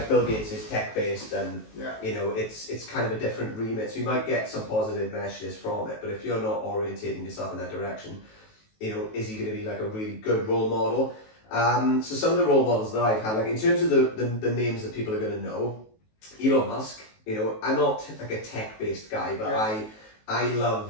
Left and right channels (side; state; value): right; late; 19 ms